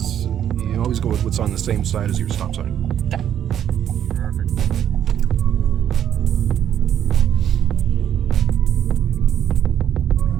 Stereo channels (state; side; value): quieter; left; 9.9 dB